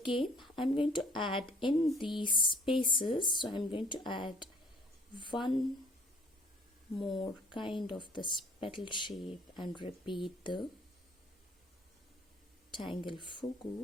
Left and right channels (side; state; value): both; normal; correlation 0.57